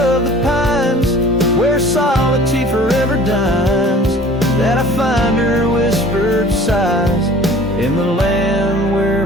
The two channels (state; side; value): normal; both; correlation 0.47